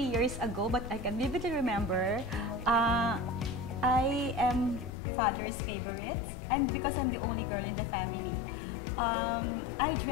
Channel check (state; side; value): drops out; right; at 5.0 s